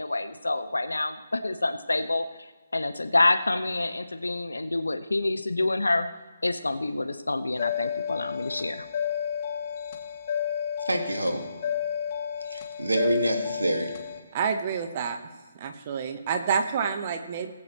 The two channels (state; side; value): inverted; both; correlation -0.84